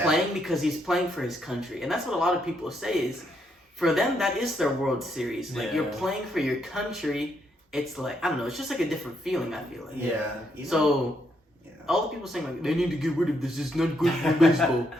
playing because he's playing for his country, and that's what a lot of people say is, for them that is their World Series. Like Yeah. you're playing for your country. It's like I don't know. It's just like a different feeling. I feel like. Yeah. Even- So yeah. all the people saying like they need to get rid of this. It's not good for baseball.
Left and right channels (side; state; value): both; normal; correlation 0.76